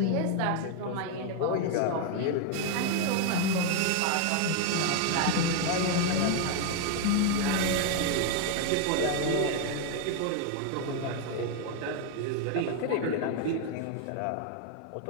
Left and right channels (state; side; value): different; both; correlation 0.01